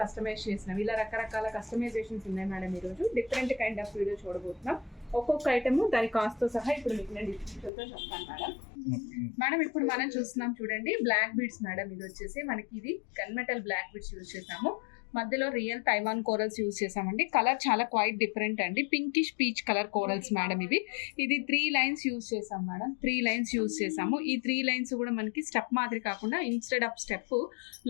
కస్టమైజ్ చేసినవి, ఇలా రకరకాల కస్టమైజేషన్స్ ఉన్నాయి మేడం. ఈరోజు డిఫరెంట్ కైండ్ ఆఫ్ వీడియో చూడబోతున్నాం. ఒక్కొక్క ఐటమ్ దాని కాస్ట్తో సహా ఇప్పుడు మీకు నేను డిస్క్రిప్షన్తో చెప్తాను మేడం. మేడం ఇప్పుడు మనం చూస్తున్నాం చూడండి, బ్లాక్ బీడ్స్ మేడం. ఇది వచ్చేసి మనకి ఇది గన్మెటల్ బ్లాక్ బీడ్స్ యూజ్ చేసాము. మధ్యలో రియల్ తైవాన్ కోరల్స్ యూజ్ చేసామండి. కలర్ చాలా క్వైట్ డిఫరెంట్ అండి, pinkish peach colour corals madam. ఇది 3 లైన్స్ యూజ్ చేసాం మేడం. 3 లైన్స్ యూజ్ చేసాము. ఈ 3 లైన్స్ కూడా మనకి స్టెప్ మాదిరి కాకుండా ఇన్స్టెడ్ ఆఫ్ స్టెప్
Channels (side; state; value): right; drops out; at 7.7 s